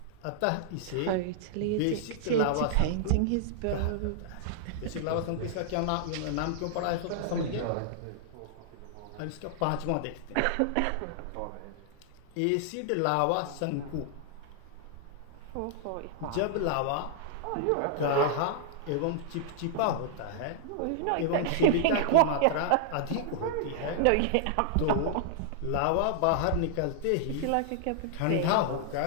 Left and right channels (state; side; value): different; both; correlation -0.01